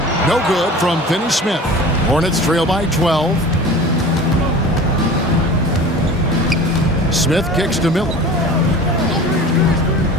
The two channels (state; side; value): normal; both; correlation 0.39